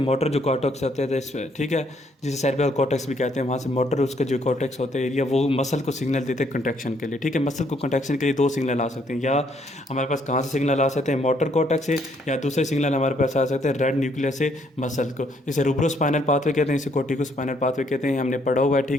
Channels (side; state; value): both; normal; correlation 0.69